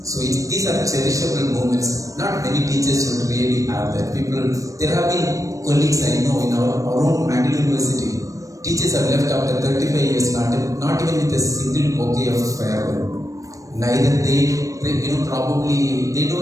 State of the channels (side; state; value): left; late; 0.16 ms